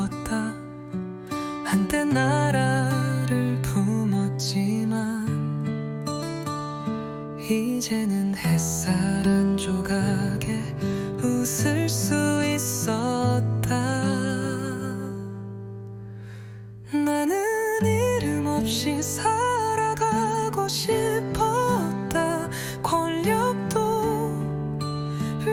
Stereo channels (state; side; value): identical; both; correlation 1.00